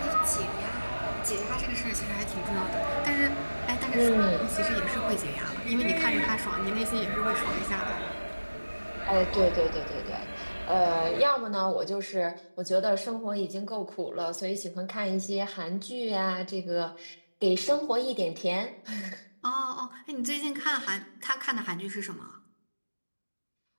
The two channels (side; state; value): both; inverted; correlation -1.00